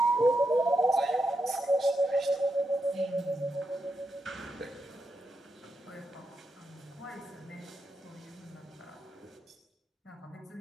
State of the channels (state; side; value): normal; both; correlation 0.85